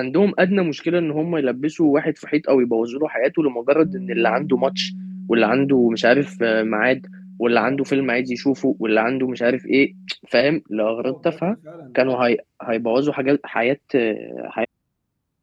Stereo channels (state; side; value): identical; both; correlation 1.00